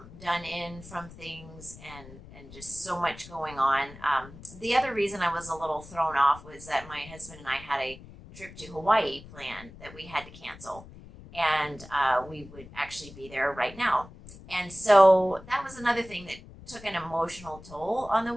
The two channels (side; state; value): left; noise; rumble, 18 dB below the sound